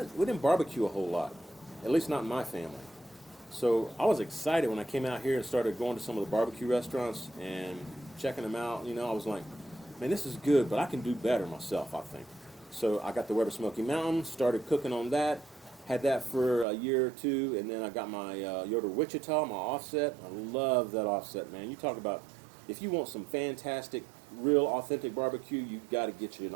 barbecue a whole lot, at least not in my family. So I was excited when I came out here and started going to some of the barbecue restaurants and checking them out. You know, I was like, man, this is good, but I can do better myself, I think. So I got the Weber Smoky Mountain, started cooking on that, had that for a year or two, and then I got my Yoder Wichita, my offset. I love that offset, man. You talk about, if you want some fantastic, real, authentic barbecue, you've got to get you an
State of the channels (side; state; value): left; drops out; at 16.7 s